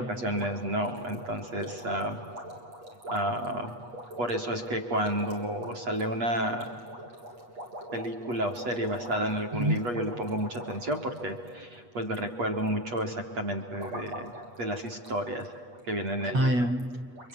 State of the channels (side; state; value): left; late; 8.3 ms